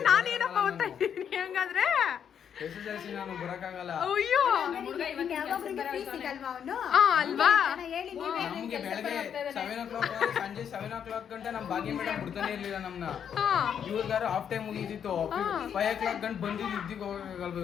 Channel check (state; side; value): quieter; right; 8.3 dB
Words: ನಾನೇನಪ್ಪ ಓದ್ತಾ ಇದ್ದೀನಿ ಹಂಗಾದ್ರೆ. SSLC ನಾನು ಬರಕ್ಕಾಗಲ್ಲ. ಅಯ್ಯೋ ಅಲ್ವಾ? ನಮ್ಗೆ ಬೆಳಗ್ಗೆ 7 o'clock ಸಂಜೆ 7 o'clock ಗಂಟೆ ನಮ್ ಭಾಗ್ಯ ಮೇಡಮ್ ಬಿಡ್ತಾನೆ ಇರ್ಲಿಲ್ಲ ನಮ್ನ. ಇವ್ರಿಗಾರು ಹಾಫ್ ಟೈಮ್ ಮುಗಿದಿತ್ತು, 5 o'clock ಗಂಟೆ ಬಂದಿದ್ದು ಇದ್ದಿಗೆ ಹೋಗಲ್ವ